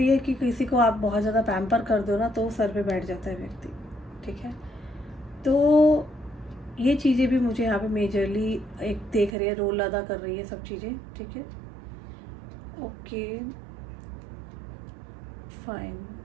है कि किसी को आप बहुत ज़्यादा पैम्पर कर दो ना तो सर पे बैठ जाता है व्यक्ति, ठीक है। तो ये चीज़ें भी मुझे यहाँ पे मेजरली एक देख रही है, रोल अदा कर रही है सब चीज़ें, ठीक है। ओके फाइन,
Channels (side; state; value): left; drops out; at 9.3 s